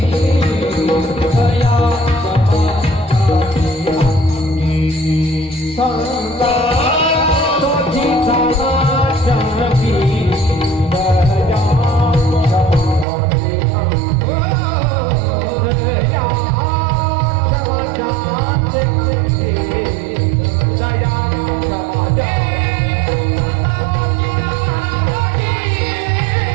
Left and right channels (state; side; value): drops out; left; at 13.1 s